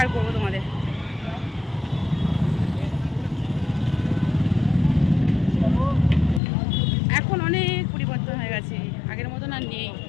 করবো তোমাদের। এখন অনেক পরিবর্তন হয়ে গেছে, আগের মতন আর নেই।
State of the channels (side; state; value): right; drops out; at 6.4 s